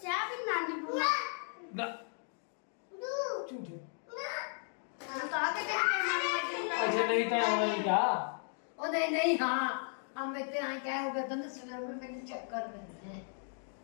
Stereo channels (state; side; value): silent; right; 54 dB below the other